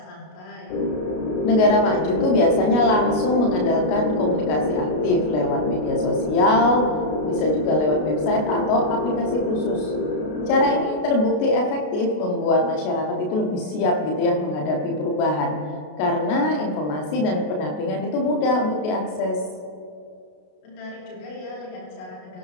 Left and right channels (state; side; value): late; right; 33 ms